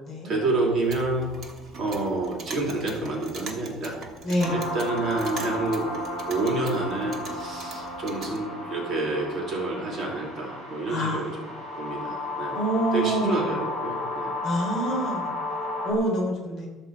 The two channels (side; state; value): both; normal; correlation 0.47